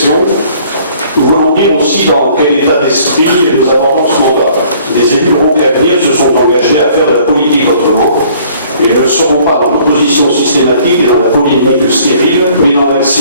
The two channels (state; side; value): inverted; both; correlation -0.57